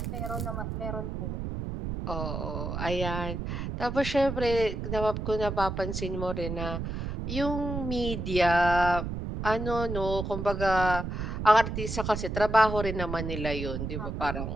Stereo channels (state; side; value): noise; right; rumble, 4 dB below the sound